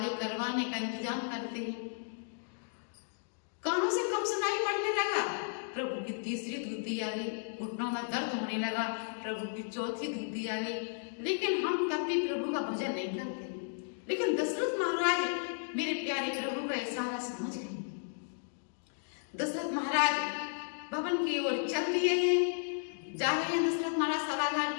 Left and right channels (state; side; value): silent; right; digital silence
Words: करवाने का इंतजाम करते हैं। कानों से कम सुनाई पड़ने लगा, प्रभु की तीसरी धुती आ गई। घुटनों में दर्द होने लगा, प्रभु की चौथी धुती आ गई। लेकिन हम तब भी प्रभु का भजन नहीं करते। लेकिन दशरथ महाराज मेरे प्यारे प्रभु का इशारा समझ गए। दशरथ महाराज भवन की ओर चल दिए हैं, जा रहे हैं दशरथ महाराज सभागार